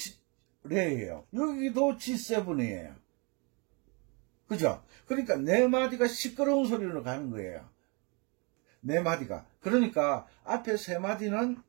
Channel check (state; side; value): quieter; left; 31.8 dB